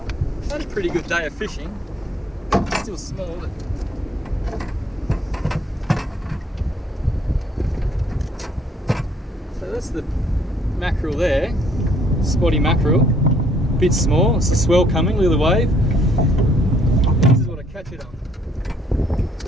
Had a pretty good day of fishing. Still small, but so that's the mackerel there. Spotty mackerel. Bit small. It's a swell coming. Look at the wave. This is what I catch it on.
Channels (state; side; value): normal; both; correlation 0.65